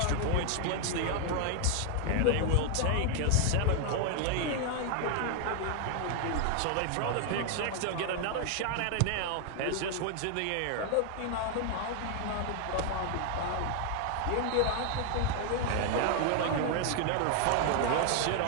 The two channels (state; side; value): different; both; correlation 0.00